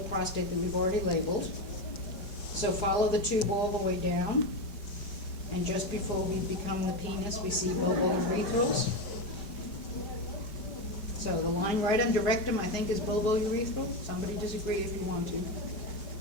that we've already labeled. So follow the tube all the way down. And just before we become the penis, we see bulbourethral. So the line right under rectum, I think, is bulbourethral. Somebody disagree if you want to.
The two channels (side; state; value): right; late; 5.1 ms